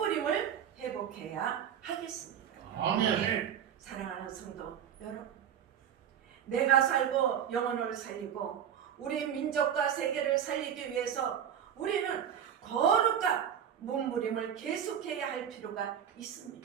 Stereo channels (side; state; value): left; quieter; 9.0 dB